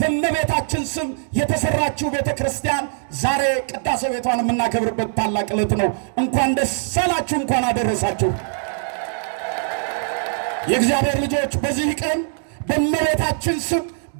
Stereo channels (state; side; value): silent; left; digital silence